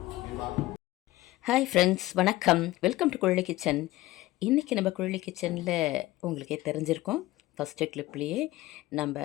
ஹாய் ஃப்ரெண்ட்ஸ், வணக்கம். Welcome to Kuzhali kitchen. இன்றைக்கி நம்ம குழலி கிச்சனில் உங்களுக்கே தெரிஞ்சிருக்கோம், ஃபஸ்ட்டு கிளிப்லேயே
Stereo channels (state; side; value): quieter; right; 17.5 dB